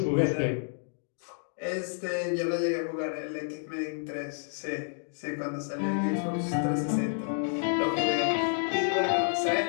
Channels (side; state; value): right; silent; 58 dB below the other